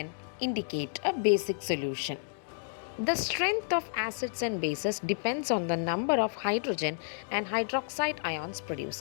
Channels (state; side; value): silent; right; digital silence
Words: indicate a basic solution. The strength of acids and bases depends on the number of hydrogen and hydroxide ions